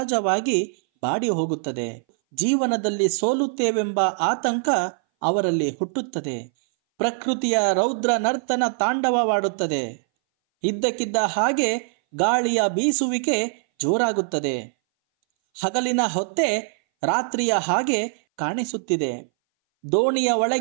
ಬಾಡಿ ಹೋಗುತ್ತದೆ. ಜೀವನದಲ್ಲಿ ಸೋಲುತ್ತೇವೆಂಬ ಆತಂಕ ಅವರಲ್ಲಿ ಹುಟ್ಟುತ್ತದೆ. ಪ್ರಕೃತಿಯ ರೌದ್ರ ನರ್ತನ ತಾಂಡವವಾಡುತ್ತದೆ. ಇದ್ದಕ್ಕಿದ್ದ ಹಾಗೆ ಗಾಳಿಯ ಬೀಸುವಿಕೆ ಜೋರಾಗುತ್ತದೆ. ಹಗಲಿನ ಹೊತ್ತೆ ರಾತ್ರಿಯ ಹಾಗೆ ಕಾಣಿಸುತ್ತಿದೆ. ದೋಣಿಯ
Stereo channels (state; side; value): silent; left; 60 dB below the other